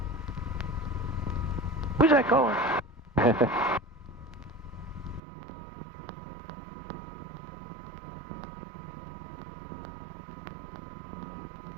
Who's that calling?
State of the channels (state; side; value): drops out; left; at 5.2 s